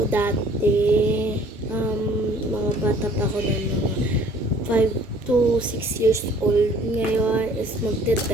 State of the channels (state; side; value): normal; both; correlation 0.55